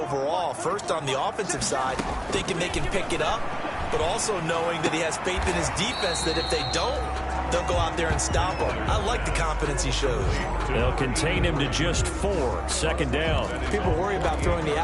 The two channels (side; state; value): both; identical; correlation 1.00